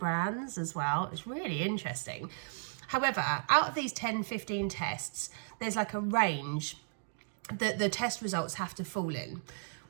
as well. It's really interesting. However, out of these 10, 15 tests, there's like a range that the test results have to fall in.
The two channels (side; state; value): left; silent; digital silence